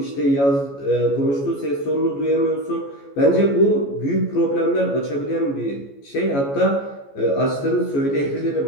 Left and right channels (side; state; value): right; late; 14 ms